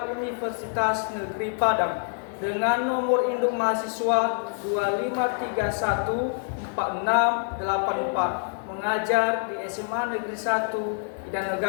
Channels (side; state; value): right; silent; 61 dB below the other